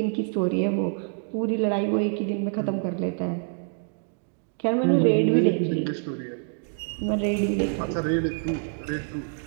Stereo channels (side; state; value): left; silent; 61 dB below the other